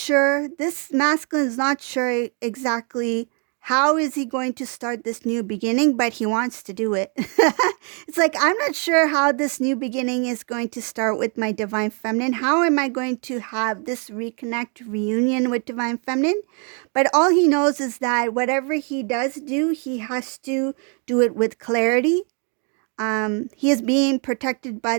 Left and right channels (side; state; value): left; quieter; 38.0 dB